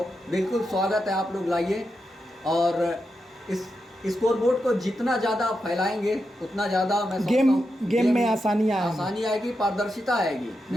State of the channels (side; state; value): both; normal; correlation 0.87